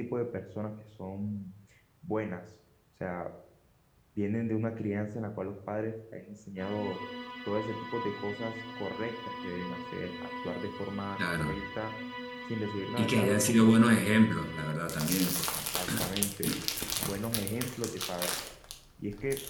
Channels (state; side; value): identical; both; correlation 1.00